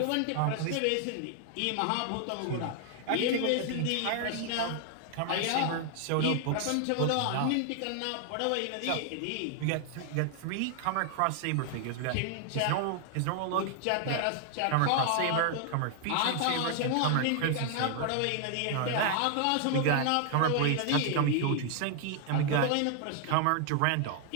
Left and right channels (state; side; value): different; both; correlation 0.00